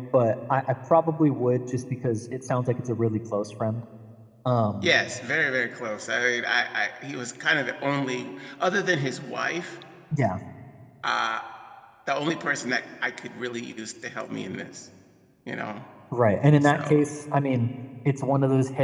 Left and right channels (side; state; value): both; identical; correlation 1.00